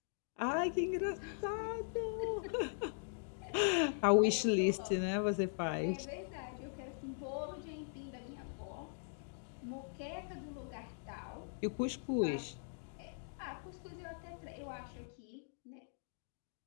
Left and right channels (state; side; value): silent; right; digital silence